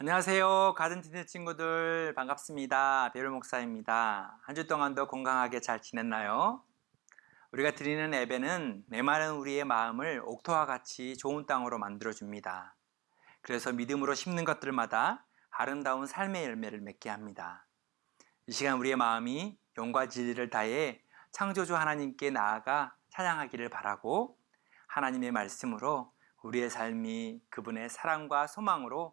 안녕하세요. 가든틴트 친구들 반갑습니다. 배율 목사입니다. 한 주 동안도 건강하게 잘 지냈나요? 우리가 드리는 예배는 메마른 우리의 마음을 옥토와 같이 좋은 땅으로 만들어줍니다. 그래서 믿음으로 심는 것들마다 아름다운 삶의 열매를 맺게 합니다. 이 시간 우리의 마음이 영과 진리를 다해 창조주 하나님께 나아가 찬양하기를 바라고 하나님의 말씀으로 우리의 삶이 그분의 사랑과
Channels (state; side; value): quieter; left; 20.6 dB